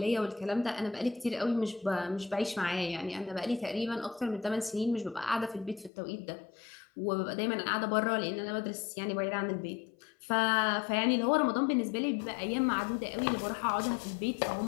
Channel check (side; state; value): right; drops out; at 5.9 s